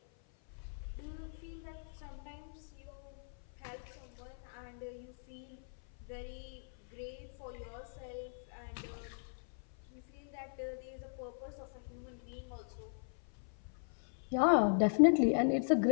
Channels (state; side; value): silent; right; 52 dB below the other